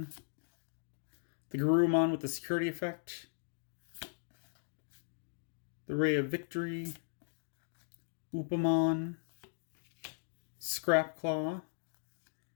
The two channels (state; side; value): silent; right; digital silence